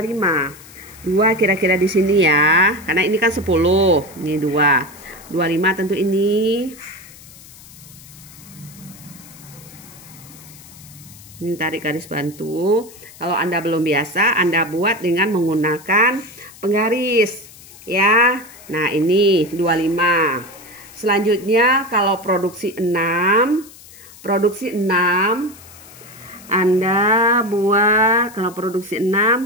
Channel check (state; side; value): noise; left; hiss, 20 dB below the sound